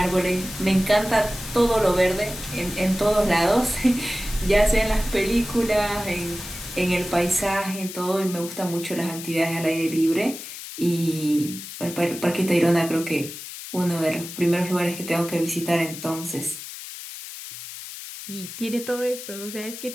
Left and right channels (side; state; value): left; noise; hiss, 11 dB below the sound